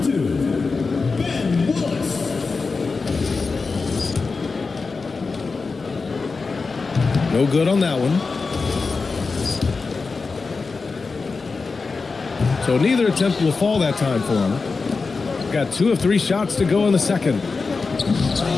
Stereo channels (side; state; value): right; quieter; 4.3 dB